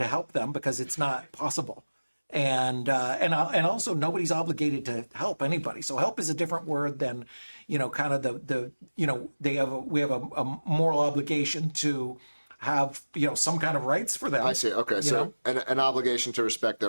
help them because it's not possible. And also nobody's obligated to help anybody. So help is a different word than, kind of we have a moral obligation to have, some kind of rights for them. I see. Okay, you so know? an obligation to respect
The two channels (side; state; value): both; inverted; correlation -1.00